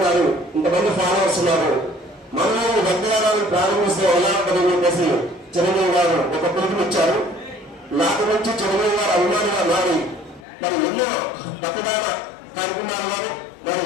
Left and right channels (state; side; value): drops out; right; at 10.5 s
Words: ఇంతమంది ఫాలోవర్స్ ఉన్నారు, మనలో రక్తదానాన్ని ప్రారంభిస్తే ఎలా ఉంటుందని చెప్పేసి చిరంజీవి గారు ఒక పిలుపునిచ్చారు. నాటి నుంచి చిరంజీవి గారు అభిమానిగా మారి మరి ఎన్నో రక్తదాన కార్యక్రమాలు మరి